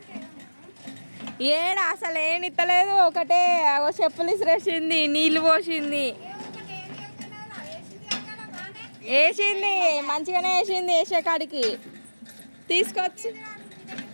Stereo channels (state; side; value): inverted; both; correlation -1.00